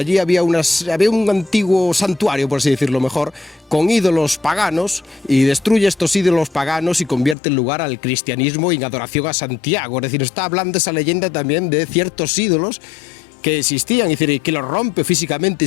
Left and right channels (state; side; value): drops out; right; at 7.4 s